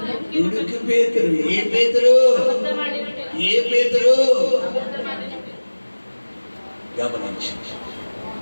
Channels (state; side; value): inverted; both; correlation -1.00